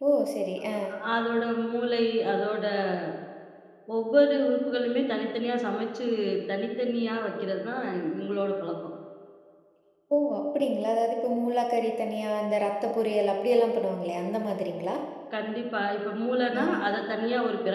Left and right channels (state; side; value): identical; both; correlation 1.00